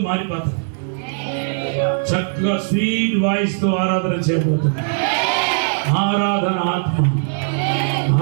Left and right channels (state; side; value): silent; left; digital silence